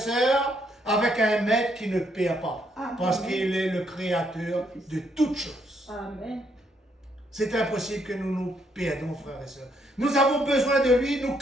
avec un maître qui ne perd pas. Amen. Parce qu'il est le créateur de toutes choses. Amen. C'est impossible que nous nous perdons, frères et sœurs. Nous avons besoin de lui, nous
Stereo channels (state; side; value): normal; both; correlation 0.73